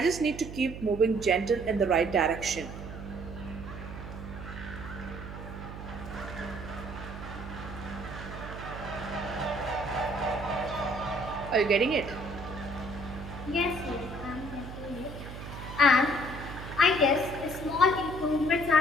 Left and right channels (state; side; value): noise; right; hum, 10 dB below the sound